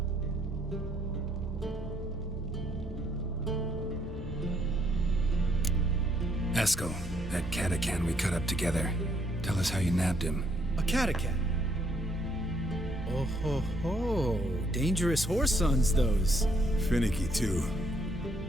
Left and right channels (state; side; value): normal; both; correlation 0.70